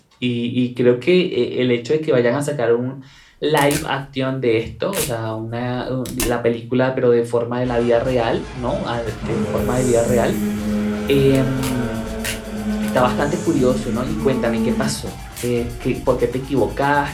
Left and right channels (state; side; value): identical; both; correlation 1.00